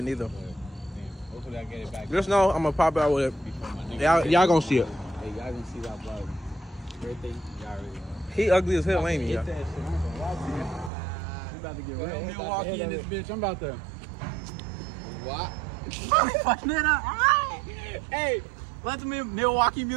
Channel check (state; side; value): drops out; left; at 10.9 s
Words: either. Hopefully I get it back. Just know I'm gonna pop out with it. Y'all gonna see it. Hey, y'all gonna see that vlog. Everything, y'all already know. He ugly as hell, ain't he? Hit that shit. I'm gonna watch it. We about to get real Milwaukee in this bitch. I'm about to. What? Hey, let the Milwaukee